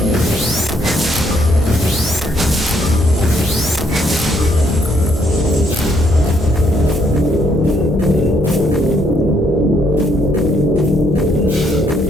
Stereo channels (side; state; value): both; normal; correlation 0.71